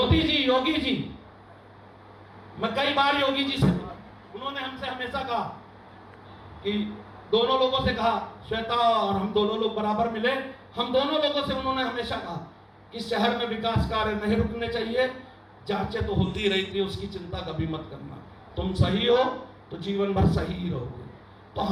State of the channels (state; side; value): identical; both; correlation 1.00